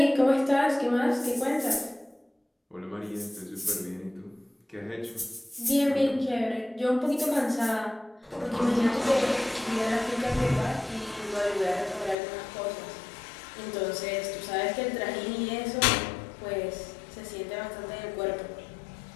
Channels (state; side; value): drops out; right; at 12.2 s